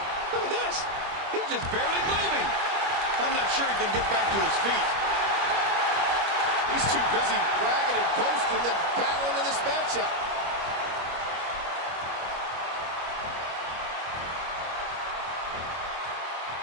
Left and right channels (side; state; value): left; late; 25 ms